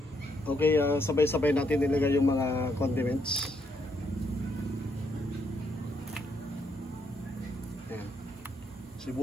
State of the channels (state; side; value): normal; both; correlation 0.75